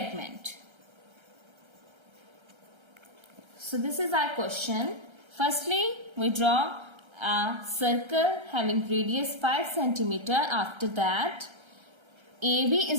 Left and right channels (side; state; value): left; late; 1.3 ms